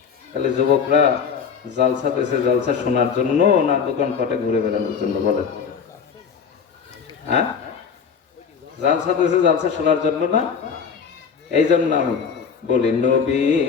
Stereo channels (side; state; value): right; quieter; 6.5 dB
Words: তাহলে যুবকরা জালসা পেয়েছে জালসা শোনার জন্য না দোকানপাটে ঘুরে বেড়ানোর জন্য? বলেন। হ্যাঁ, জালসা পেয়েছে জালসা শোনার জন্য না? এই জন্য আমি বলি,